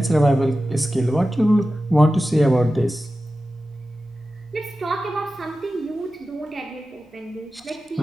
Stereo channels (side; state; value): both; normal; correlation 0.94